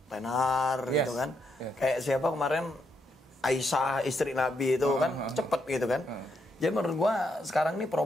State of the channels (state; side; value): normal; both; correlation 0.78